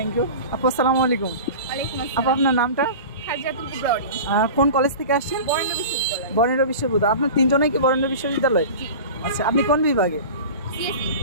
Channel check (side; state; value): both; inverted; correlation -0.34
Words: ইউ আপু। আসসালামু আলাইকুম। আপু আপনার নামটা? কোন কলেজ থেকে আসছেন? বরেন্দ্র বিশ্ববিদ্যালয়। আপনার তিনজনেই কি বরেন্দ্র বিশ্ববিদ্যালয়? আচ্ছা, আপনি কোন বিভাগে?